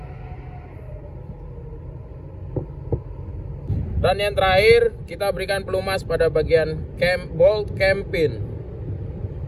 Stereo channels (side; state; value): both; identical; correlation 1.00